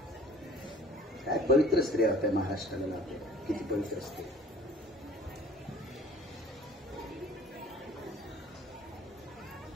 काय पवित्र स्त्रिया होत्या महाराष्ट्राला. किती पवित्र स्त्री.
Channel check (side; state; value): both; normal; correlation 0.49